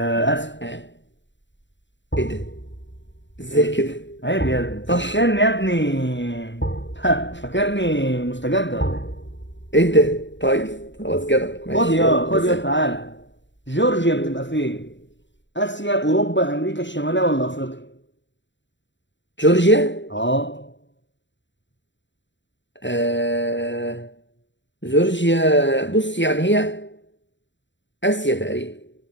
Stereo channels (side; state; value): right; late; 0.53 ms